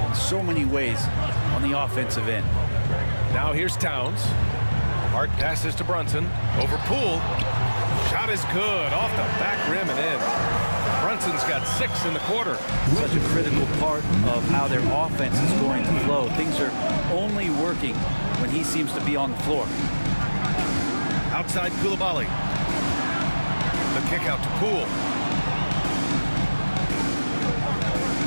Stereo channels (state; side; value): inverted; both; correlation -1.00